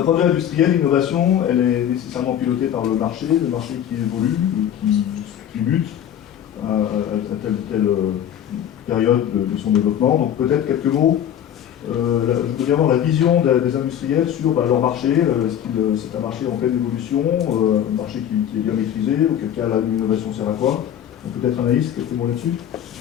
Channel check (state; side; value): quieter; right; 10.0 dB